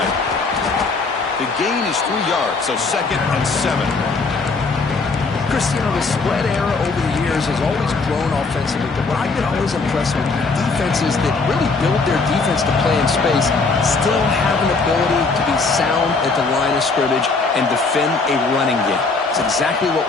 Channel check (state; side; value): quieter; right; 4.1 dB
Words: The gain is 3 yards, so second and 7. Chris, you know, the spread era over the years has always grown offensively, but what I've been always impressed with defenses that really build their defense to play in space still have an ability to be sound at the line of scrimmage and defend a running game. It's exactly what